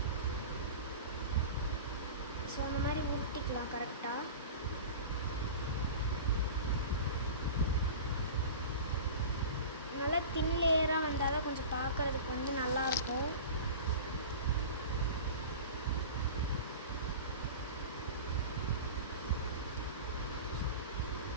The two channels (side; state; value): both; inverted; correlation -0.34